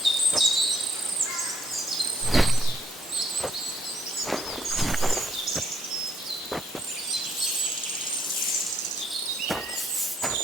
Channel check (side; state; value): both; normal; correlation 0.69